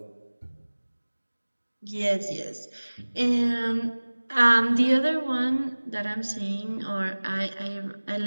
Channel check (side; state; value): both; inverted; correlation -1.00